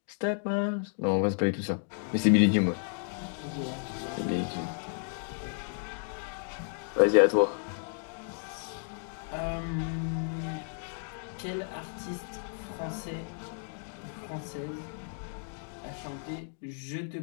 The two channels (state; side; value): silent; right; 55 dB below the other